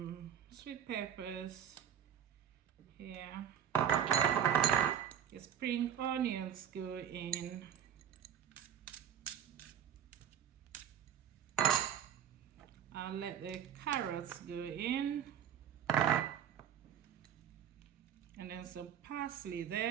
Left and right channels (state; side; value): quieter; left; 9.3 dB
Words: sweet peppers here. The spring onions go in. I'll let the carrots go in. And then some parsley